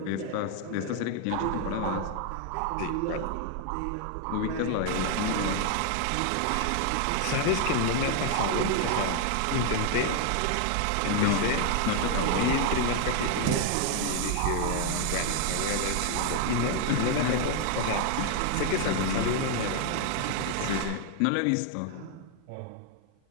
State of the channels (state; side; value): different; both; correlation 0.00